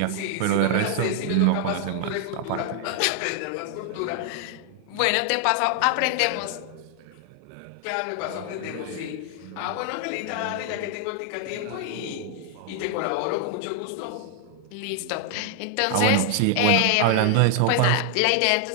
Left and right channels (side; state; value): both; different; correlation 0.00